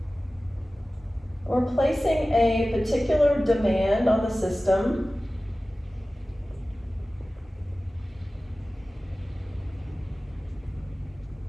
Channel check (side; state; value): both; normal; correlation 0.96